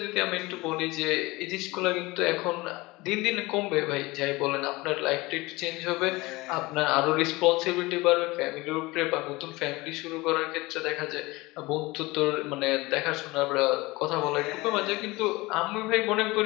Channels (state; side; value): quieter; right; 22.0 dB